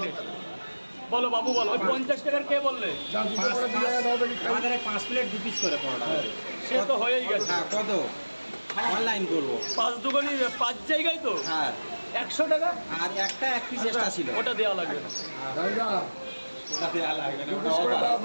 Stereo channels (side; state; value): both; inverted; correlation -1.00